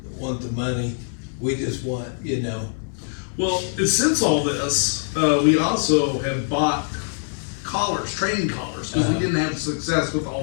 the money, we just want, you know. Well, since all this, we also have bought collars, training collars, because we didn't have success with the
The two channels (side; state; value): right; silent; digital silence